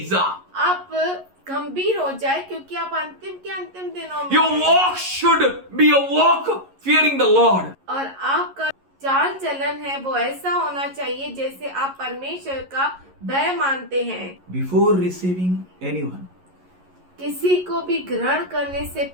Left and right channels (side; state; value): left; late; 11 ms